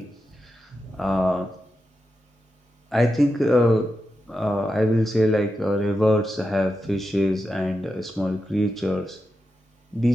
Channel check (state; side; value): normal; both; correlation 0.89